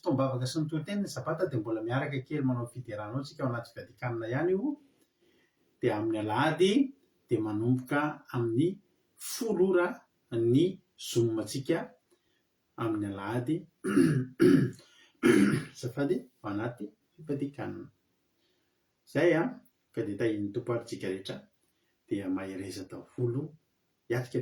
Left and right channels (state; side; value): identical; both; correlation 1.00